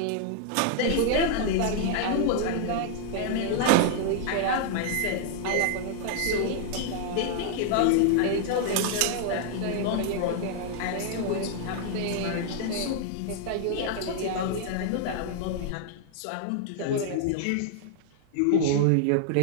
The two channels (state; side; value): different; both; correlation -0.01